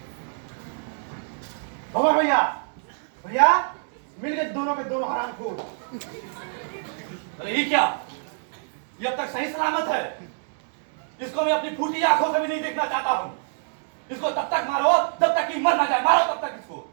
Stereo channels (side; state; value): left; silent; digital silence